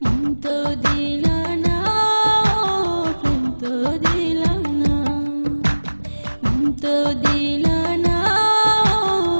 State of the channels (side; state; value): both; inverted; correlation -1.00